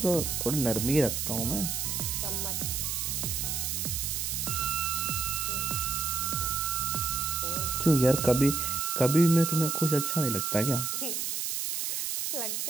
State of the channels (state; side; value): noise; right; hiss, 1 dB below the sound